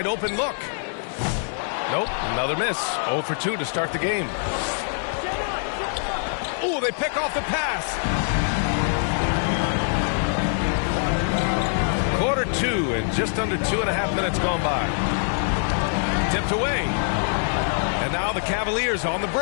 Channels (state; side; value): silent; right; 63 dB below the other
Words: open look. Nope, another miss. 0 for 2 to start the game. Oh, they pick off the pass. Quarter 2 and just under 2.5 minutes gone by. Tipped away. And now the Cavaliers on the